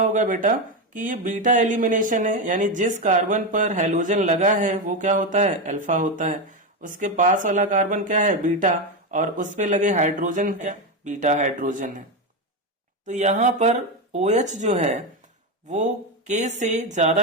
बेटा कि ये बीटा एलिमिनेशन है, यानी जिस कार्बन पर हैलोजन लगा है वो क्या होता है, अल्फा होता है। उसके पास वाला कार्बन क्या है, बीटा, और उस पे लगे हाइड्रोजन क्या, बीटा हाइड्रोजन है। तो यहाँ पर OH जो है वो K से ज्यादा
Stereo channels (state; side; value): normal; both; correlation 0.11